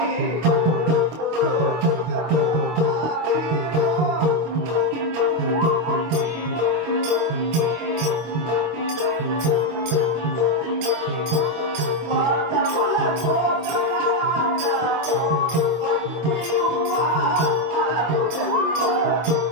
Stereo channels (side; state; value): left; late; 25 ms